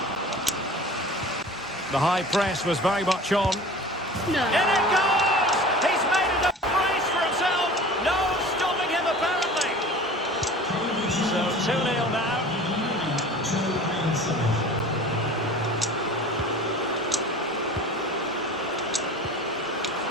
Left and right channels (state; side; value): normal; both; correlation 0.41